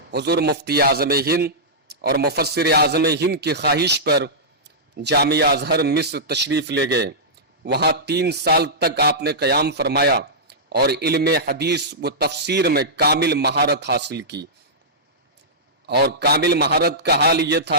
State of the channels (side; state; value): both; normal; correlation -0.14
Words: حضور مفتی اعظم ہند اور مفسر اعظم ہند کی خواہش پر جامعہ ازہر مصر تشریف لے گئے۔ وہاں 3 سال تک آپ نے قیام فرمایا اور علم حدیث و تفسیر میں کامل مہارت حاصل کی۔ اور کامل مہارت کا حال یہ